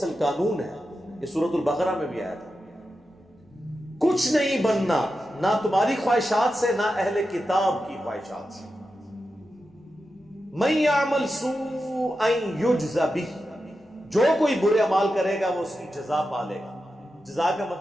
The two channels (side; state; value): both; normal; correlation 0.90